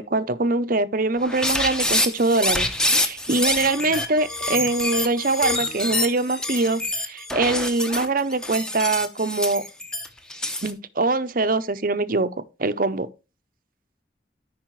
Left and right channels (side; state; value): both; normal; correlation 0.05